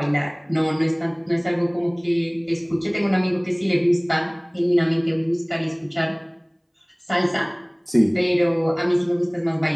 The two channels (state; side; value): identical; both; correlation 1.00